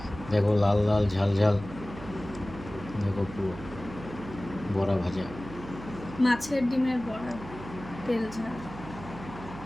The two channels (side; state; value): right; noise; hum, 13 dB below the sound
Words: দেখো, লাল লাল ঝাল ঝাল। দেখো, পুরো বড়া ভাজা, মাছের ডিমের বড়া, তেল ঝাল।